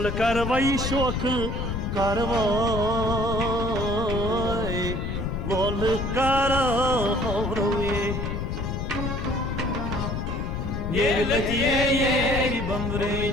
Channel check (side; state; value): left; noise; rumble, 2 dB below the sound